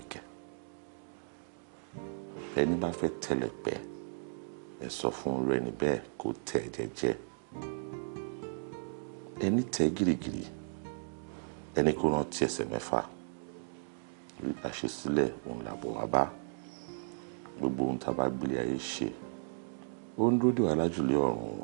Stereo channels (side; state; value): left; silent; digital silence